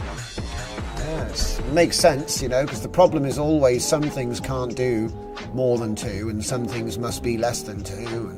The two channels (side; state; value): both; identical; correlation 1.00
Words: Yes, it makes sense, because the problem is always some things can't do more than 2 and some things must be less than 2.